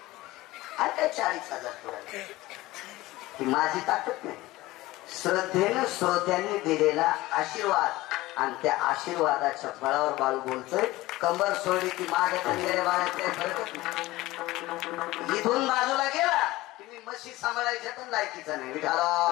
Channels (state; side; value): quieter; right; 18.5 dB